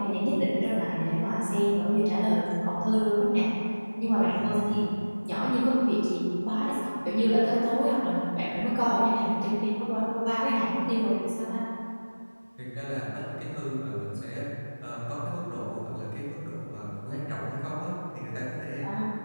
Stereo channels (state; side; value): inverted; both; correlation -1.00